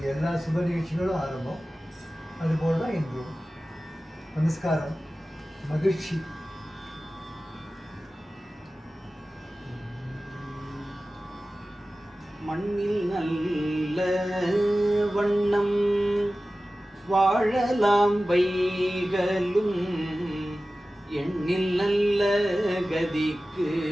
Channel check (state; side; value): normal; both; correlation 0.96